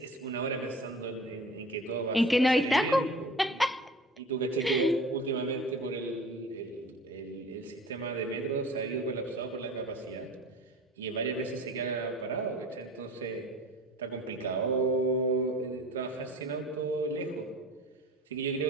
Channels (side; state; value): both; normal; correlation 0.41